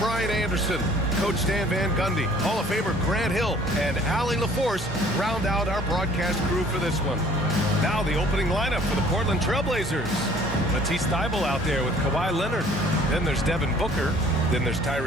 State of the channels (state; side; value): normal; both; correlation 0.54